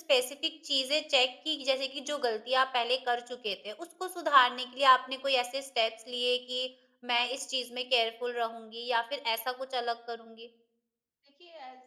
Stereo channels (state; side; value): identical; both; correlation 1.00